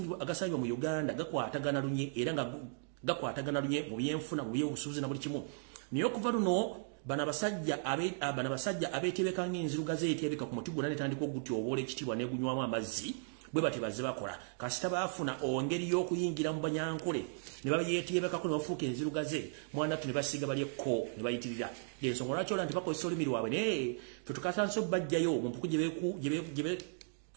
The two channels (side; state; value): left; silent; digital silence